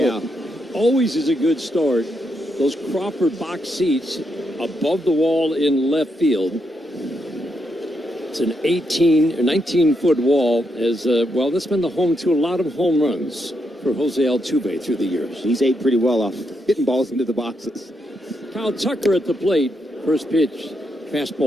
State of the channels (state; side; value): normal; both; correlation 0.81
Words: out, always is a good start. Those Crawford box seats above the wall in left field. It's an 18 or 19-foot wall. That's been the home to a lot of home runs for Jose Altuve through the years. He's ate pretty well off hitting balls into the boxes. Kyle Tucker at the plate. First pitch.